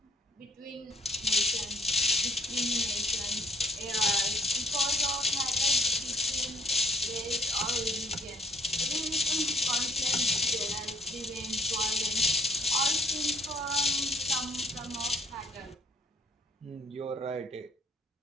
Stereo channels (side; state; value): both; normal; correlation 0.63